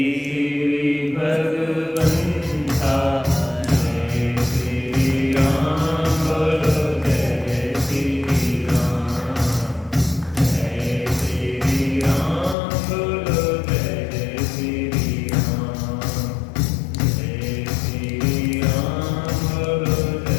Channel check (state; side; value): drops out; right; at 12.6 s